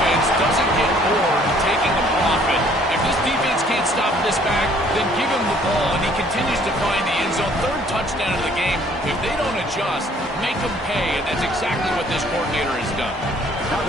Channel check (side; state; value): both; normal; correlation 0.59